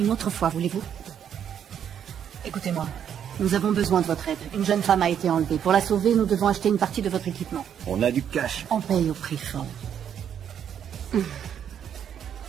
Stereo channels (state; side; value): quieter; left; 8.9 dB